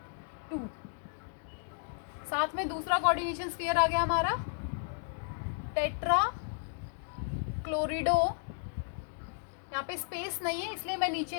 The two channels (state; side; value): silent; right; digital silence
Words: 2, साथ में दूसरा कोऑर्डिनेशन स्फीयर आ गया हमारा टेट्रा क्लोरिडो। यहाँ पे स्पेस नहीं है इसलिए मैं